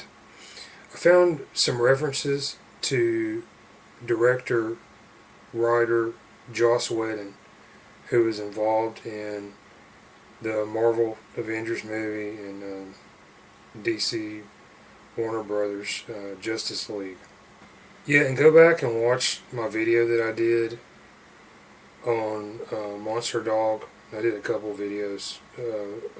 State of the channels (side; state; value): both; identical; correlation 1.00